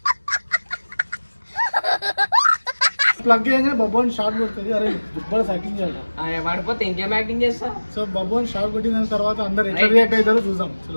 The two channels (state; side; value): inverted; both; correlation -1.00